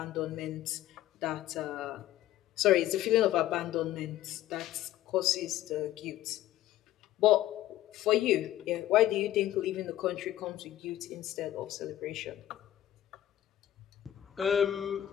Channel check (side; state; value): right; quieter; 13.3 dB